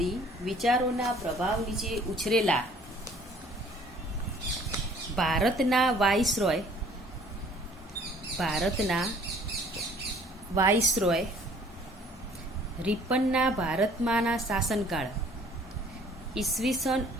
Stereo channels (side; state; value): both; normal; correlation 0.55